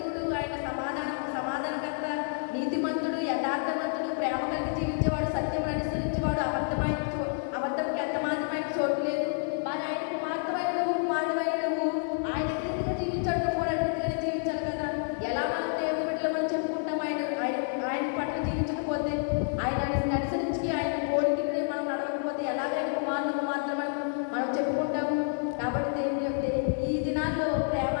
ఆయన సమాధానకర్త, నీతిమంతుడు, యథార్థవంతుడు, ప్రేమ కలిగి జీవించేవాడు, సత్యం అనుసరించేవాడు, అబద్ధంకి ఎంత మాత్రమైన చోటు లేదు. మరి ఆయనకు మాత్రమైన నువ్వు కుమారుడు అయిన నువ్వు ఆయన రీతిగా జీవించాడు, నువ్వు కూడా రీతిగానే జీవించాలి కదా. ఎలా మనం దేవుని బిడ్డలు మనం చెప్పుకుంటాం? ఆయన పట్ల జీవించకపోతే, ఆయన అనుసరించి ఆయన పోలికని మనం నడవకపోతే ఎలాగ ఆయన కుమారులకు మాత్రమే మనం చెప్పుకుంటాము? కాబట్టి దేవుని ఈ దినాల్లో ప్రేమ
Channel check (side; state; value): right; silent; digital silence